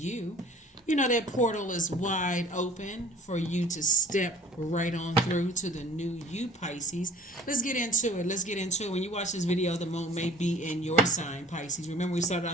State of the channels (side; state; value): both; normal; correlation 0.50